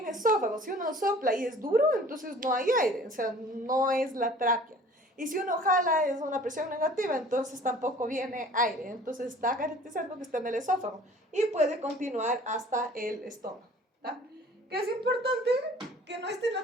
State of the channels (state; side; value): normal; both; correlation 0.49